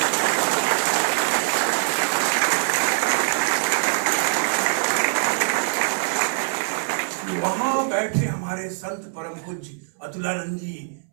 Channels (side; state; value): left; silent; 62 dB below the other